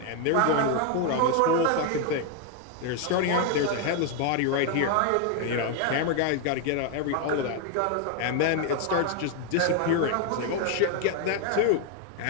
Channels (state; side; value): different; both; correlation 0.00